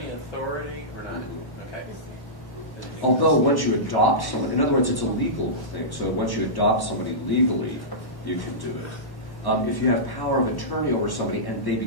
authority or not? Okay. Although once you adopt someone, in other words, it's a legal thing. So once you adopt somebody legally, you can do it. If you have power of attorney over somebody and they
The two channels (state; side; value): late; right; 1.1 ms